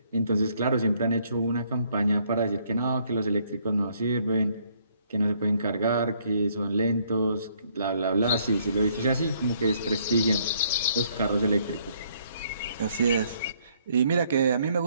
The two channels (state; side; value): inverted; both; correlation -0.67